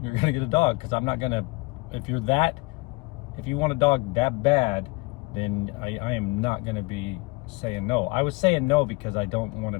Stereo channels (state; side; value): quieter; right; 25.7 dB